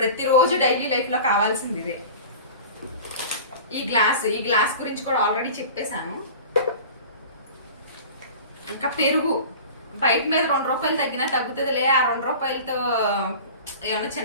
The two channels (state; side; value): inverted; both; correlation -0.38